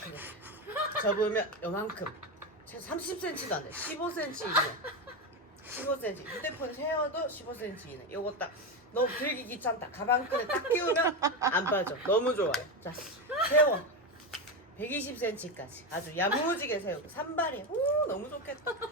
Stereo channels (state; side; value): normal; both; correlation 0.14